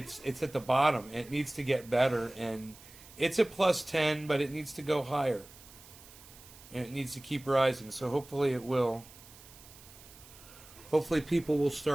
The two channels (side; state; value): right; noise; hiss, 21 dB below the sound